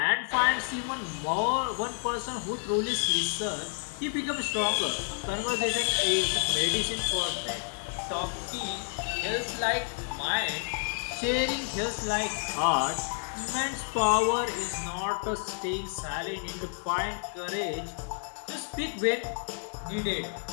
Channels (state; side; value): silent; right; 58 dB below the other